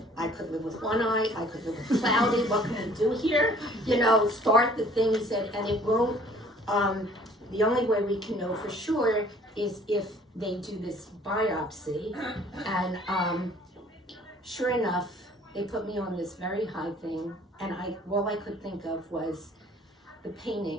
I could live with one eye. I could live with cloudy. What can we do here? You know, start the thing. He said, and it won't, the only way we can know for sure is if they do this biopsy. And sure enough, they put me on this very high thing. And all I could think of was the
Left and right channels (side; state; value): both; normal; correlation 0.55